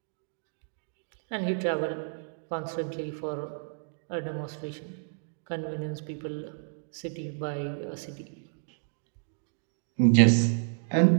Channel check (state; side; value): silent; left; digital silence